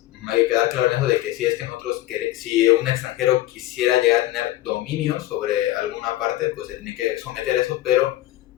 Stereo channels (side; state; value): right; quieter; 15.4 dB